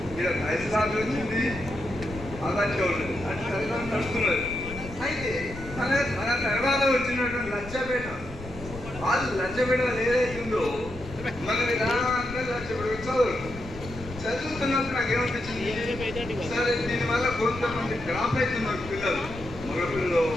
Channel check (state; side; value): noise; left; rumble, 13 dB below the sound